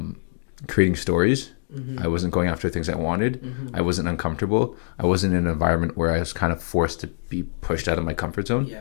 creating stories. Mm-hmm. I wasn't going after things I wanted. Mm-hmm. I wasn't uncomfortable. I wasn't in an environment where I was kind of forced to be pushed out of my comfort zone. Yeah.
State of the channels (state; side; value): silent; right; digital silence